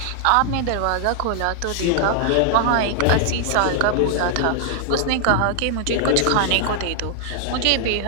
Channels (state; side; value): different; both; correlation -0.01